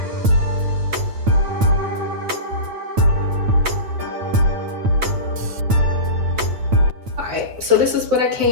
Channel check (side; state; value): left; late; 9.1 ms